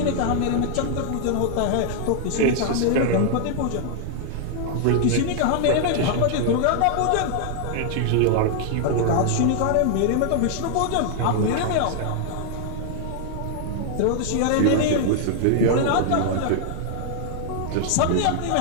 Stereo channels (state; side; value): different; both; correlation -0.01